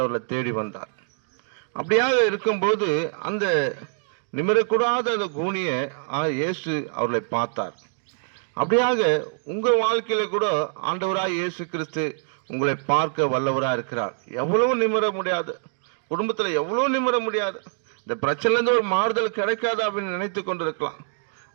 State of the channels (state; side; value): silent; left; digital silence